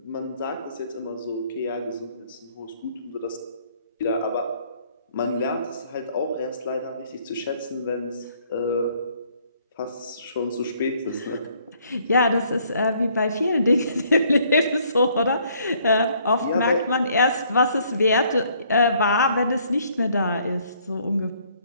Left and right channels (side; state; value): both; inverted; correlation -0.64